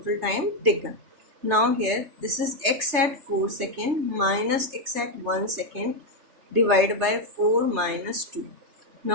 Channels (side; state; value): left; late; 3.3 ms